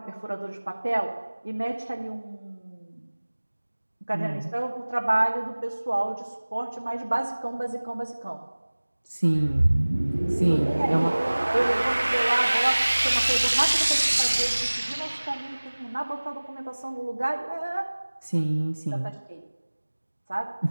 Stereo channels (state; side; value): inverted; both; correlation -1.00